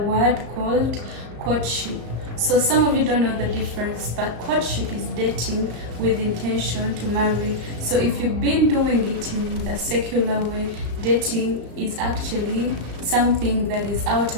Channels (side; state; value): left; late; 34 ms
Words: called courtship. So some of you don't know the difference, but courtship is dating with intention to marry. So if you've been doing it in the secular way, dating is actually something that is out